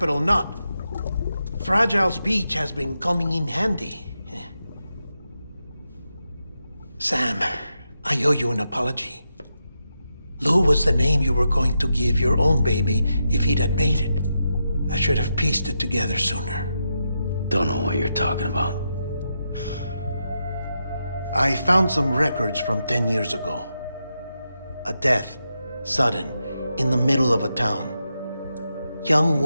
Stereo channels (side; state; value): both; inverted; correlation -0.86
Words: Knot. Fragile's beach has been coming in handy. Sam, I owe you an apology. Lou was the name you were going to give your own baby if he'd had made it. I should have pieced it together sooner. Don't know what you're talking about. I found some records from 10 years ago. A death, sudden, in the middle of a town. Young